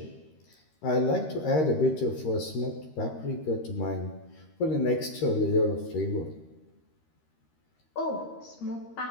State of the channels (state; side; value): late; right; 13 ms